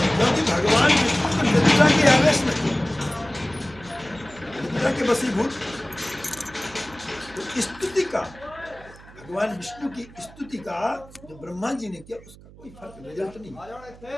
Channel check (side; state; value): right; noise; hum, 21 dB below the sound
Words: क्योंकि भगवान विष्णु तो निद्रा के आवेश में थे, निद्रा के वशीभूत। तो स्तुति का, भगवान विष्णु की स्तुति का जो ब्रह्मा जी ने किया, उसका कोई फर्क रिजल्ट नहीं,